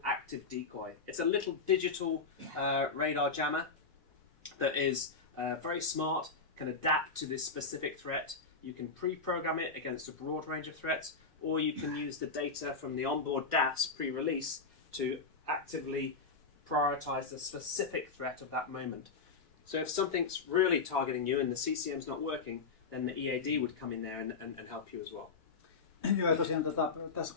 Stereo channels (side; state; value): right; quieter; 4.5 dB